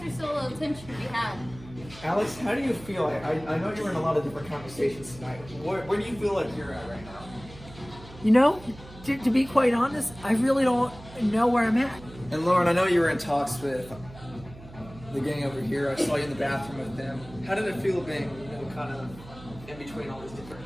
still a little tension to be had. Alex, how do you feel? I know you were in a lot of different conversations tonight. Where do you feel like you're at right now? You know, to be quite honest, I really don't know where I'm at. And Lauren, I know you were in talks with the gang over here. I saw you in the bathroom with them. How did it feel being, kind of in between all these different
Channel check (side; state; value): right; noise; hum, 18 dB below the sound